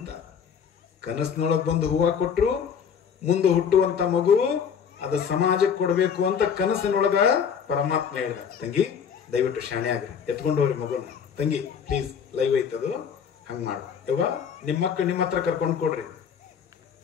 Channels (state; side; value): quieter; right; 7.3 dB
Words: ಕನಸಿನೊಳಗೆ ಬಂದು ಹೂವ ಕೊಟ್ರು. ಮುಂದೆ ಹುಟ್ಟುವಂತ ಮಗು ಅದು ಸಮಾಜಕ್ಕೆ ಕೊಡ್ಬೇಕು ಅಂತ ಕನಸಿನೊಳಗ ಪರಮಾತ್ಮ ಹೇಳಿದ. ತಂಗಿ ದಯವಿಟ್ಟು ಶಾಣೆ ಆಗ್ರಿ, ಎತ್ಕೊಂಡು ಹೋಗ್ರಿ ಮಗುನ. ತಂಗಿ ಪ್ಲೀಸ್, ಲೈವ್ ಐತದು, ಹಂಗ ಮಾಡ. ಯವ್ವ ನಿಮ್ಮ ಮಕ್ಕಳು ನಿಮ್ಮ ಹತ್ರ ಕರ್ಕೊಂಡು ಕೊಡ್ರಿ,